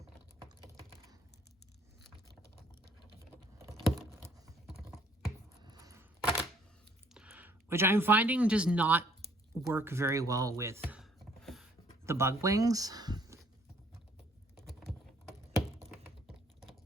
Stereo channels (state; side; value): normal; both; correlation 0.62